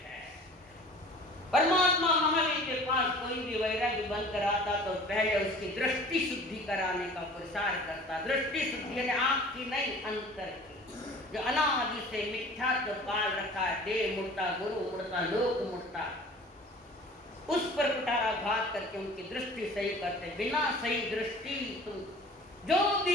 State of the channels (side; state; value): both; normal; correlation 0.45